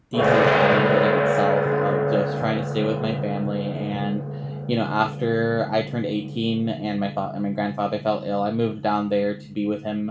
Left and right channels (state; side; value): identical; both; correlation 1.00